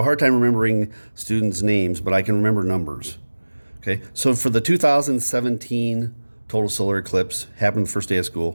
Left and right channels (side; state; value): both; inverted; correlation -1.00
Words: hard time remembering students' names, but I can remember numbers. Okay, so for the 2017 total solar eclipse, happened the first day of